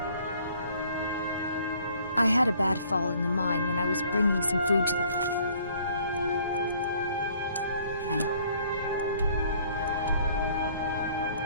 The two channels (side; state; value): both; inverted; correlation -0.59